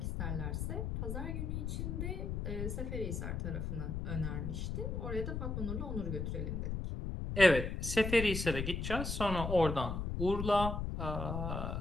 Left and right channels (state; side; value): noise; left; rumble, 2 dB below the sound